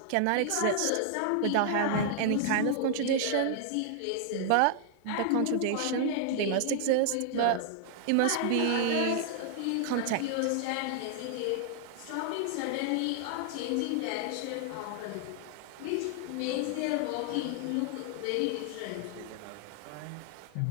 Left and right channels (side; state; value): both; different; correlation -0.01